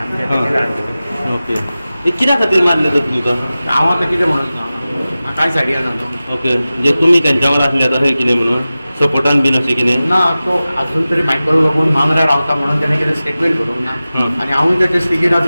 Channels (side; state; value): both; inverted; correlation -0.96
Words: आमचे. ओके. हे कित्या खातीर मारले तर तुमकां? हांव आतां कितें म्हणून म्हाका कांय सायडी येना न्हू. ओके. म्हणजे तुमी तेंच्या वांगडा आसले आतां खंय कितें म्हणून सपोर्टान बीन अशें कितें? ना, तो अजून तरी मायकल लोबोन मांद्रा रावता म्हणून तेणें कितें स्टेटमेंट करूंक ना आनी हांवूय तेचे स्थितीर